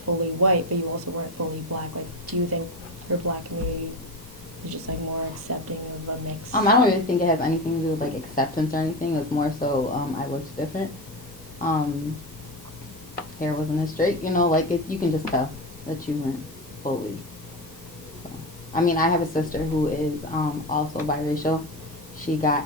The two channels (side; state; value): left; late; 1.5 ms